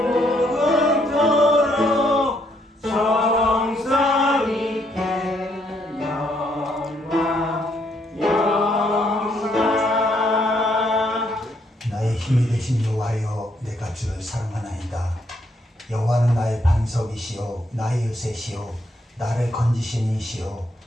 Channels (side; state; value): both; normal; correlation 0.72